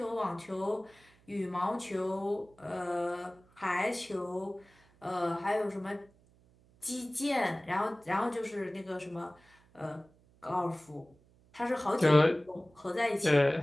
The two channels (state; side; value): noise; right; hum, 30 dB below the sound